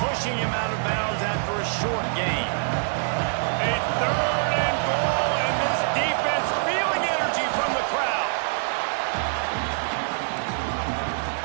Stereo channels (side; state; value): left; silent; digital silence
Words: him out of bounds after a short gain. A 3rd and goal, and this defense feeling energy from the crowd.